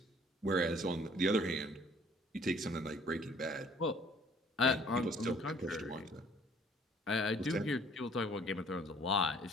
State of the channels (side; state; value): both; normal; correlation 0.57